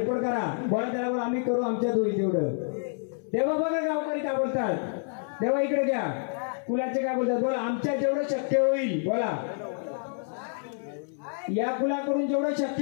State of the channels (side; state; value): right; silent; 59 dB below the other